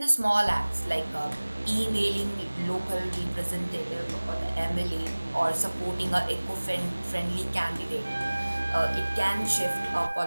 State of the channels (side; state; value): both; inverted; correlation -1.00